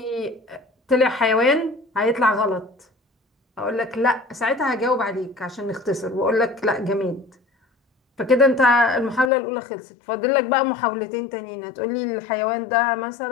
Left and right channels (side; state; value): right; drops out; at 9.3 s